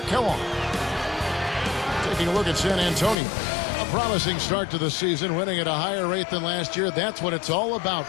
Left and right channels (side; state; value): right; drops out; at 3.2 s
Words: Kellogg. Taking a look at San Antonio. A promising start to the season, winning at a higher rate than last year. That's what it's all about,